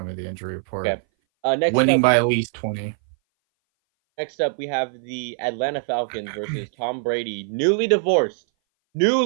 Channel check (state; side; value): silent; left; 59 dB below the other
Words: me the injury report. Okay. Next Winning up, by at least 20. Next up, we have the Atlanta Falcons versus Tom Brady, newly divorced.